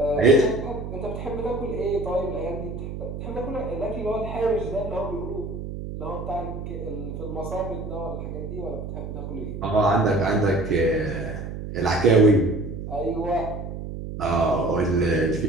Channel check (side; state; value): right; noise; hum, 7 dB below the sound